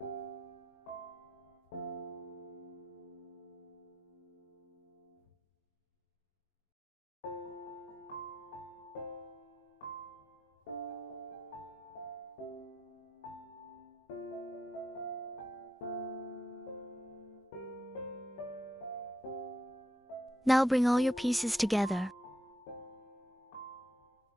Now bring all your pieces together.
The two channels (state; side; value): normal; both; correlation 0.83